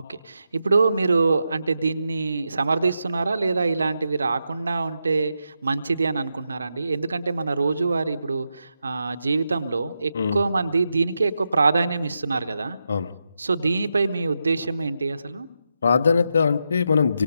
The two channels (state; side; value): inverted; both; correlation -0.86